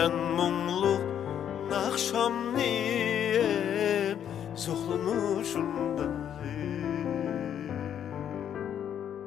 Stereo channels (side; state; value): right; quieter; 9.4 dB